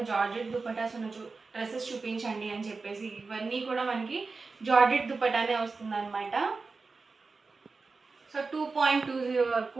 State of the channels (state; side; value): quieter; left; 4.2 dB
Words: జార్జెట్ దుప్పటాస్ ఉన్న డ్రెస్సెస్ చూపించండి అని చెప్పేసి. ఇవన్నీ కూడా మనకి జార్జెట్ దుప్పటానే వస్తుంది అనమాట. సో 2.20 వరకు